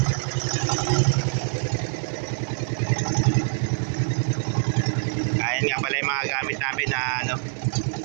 Ayan nga pala yung mga gamit namin na ano,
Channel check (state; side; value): silent; left; digital silence